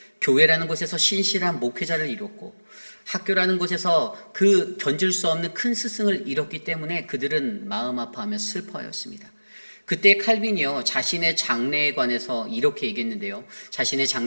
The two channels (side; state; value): both; inverted; correlation -1.00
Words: 교회라는 곳에서 신실한 목회자를 잃었고, 학교라는 곳에서 그 견줄 수 없는 큰 스승을 잃었기 때문에 그들은 마음 아파하며 슬퍼하였습니다. 그때 칼빈이요, 자신의 장래에 관해서 이렇게 얘기했는데요. 자신의